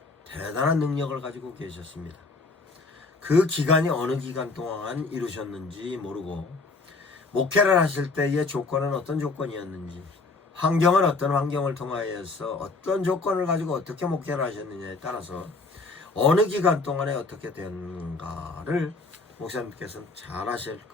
대단한 능력을 가지고 계셨습니다. 그 기간이 어느 기간 동안 이루셨는지 모르고, 목회를 하실 때의 조건은 어떤 조건이었는지, 환경은 어떤 환경을 통하여서 어떤 조건을 가지고 어떻게 목회를 하셨느냐에 따라서 어느 기간 동안에 어떻게 되는가를 목사님께서는 잘 아실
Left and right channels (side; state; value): right; quieter; 3.8 dB